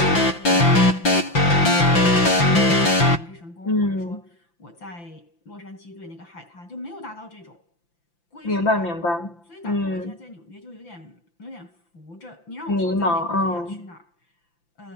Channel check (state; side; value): late; right; 5.9 ms